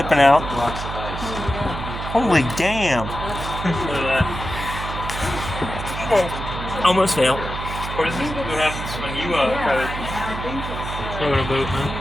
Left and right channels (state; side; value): noise; right; hum, 7 dB below the sound